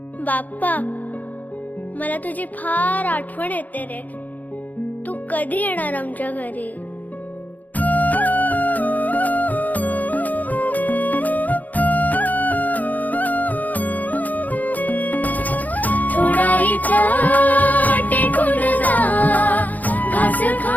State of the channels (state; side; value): late; right; 0.080 ms